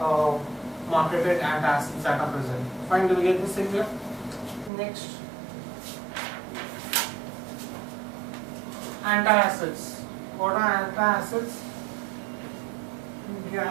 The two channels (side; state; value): left; drops out; at 4.7 s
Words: marketed antacids that are present. Fine, do we get this thing here? Next, antacids. What are antacids?